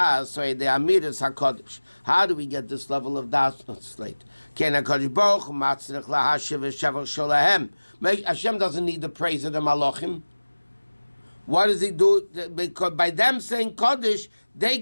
so the Amidas HaKadosh. How do we get this level of das? It's late. Ken HaKadosh Baruch Hu Matzrich LaHashiv V'Shavach Sholahem. Hashem doesn't need the praise of the Malachim. What does he do? Because by them saying Kaddish, they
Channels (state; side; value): inverted; both; correlation -1.00